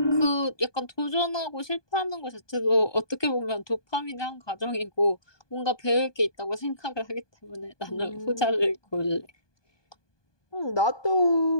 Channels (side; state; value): right; late; 1.2 ms